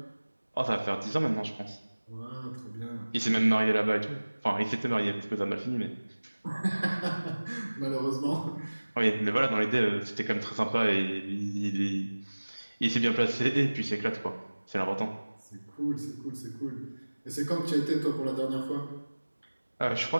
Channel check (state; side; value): inverted; both; correlation -1.00